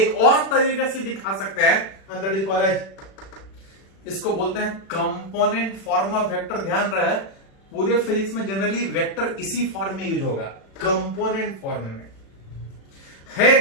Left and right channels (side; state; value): right; late; 36 ms